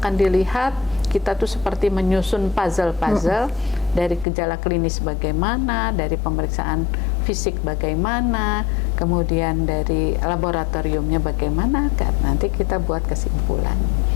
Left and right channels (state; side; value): drops out; right; at 4.2 s